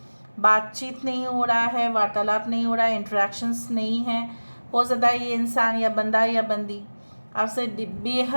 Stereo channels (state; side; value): inverted; both; correlation -1.00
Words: बातचीत नहीं हो रहा है, वार्तालाप नहीं हो रहा है, इंटरेक्शंस नहीं है. हो सकता है ये इंसान या बंदा या बंदी आपसे